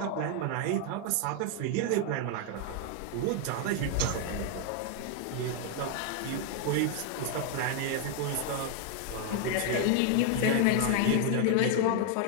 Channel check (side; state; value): both; different; correlation 0.00